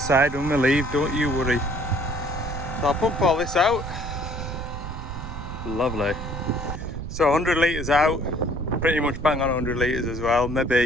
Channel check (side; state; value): right; noise; rumble, 8 dB below the sound